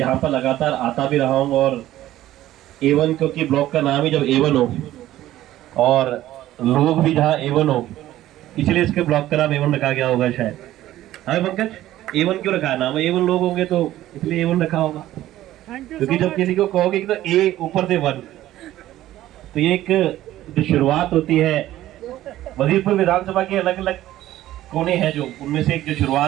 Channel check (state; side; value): quieter; left; 14.3 dB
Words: पर लगातार आता भी रहा हूँ, और A1, क्योंकि ब्लॉक का नाम ही जब A1 हो और लोग भी जहाँ A1 हो, इसलिए इसके ब्लॉक का नाम A1 रखा गया होगा शायद। हाँ पंकज, A1 क्यों रखा है नाम? A1 लोग होंगे तो इसलिए A1 रखा होगा, क्योंकि जब किसी को कहोगे कि तो A ऊपर से 1, तो ये एक जो शुरुआत होती है, वजीरपुर विधानसभा के अलग अलग कोने हैं, जो उनमें से एक जो